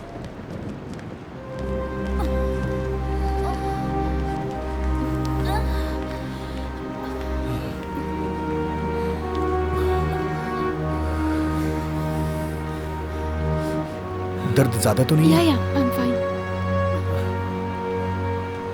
दर्द ज्यादा तो नहीं है? या आई एम फाइन।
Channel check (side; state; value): both; identical; correlation 1.00